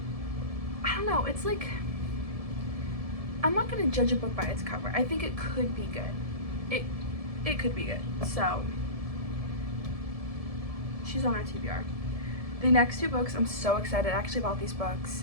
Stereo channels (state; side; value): late; left; 1.7 ms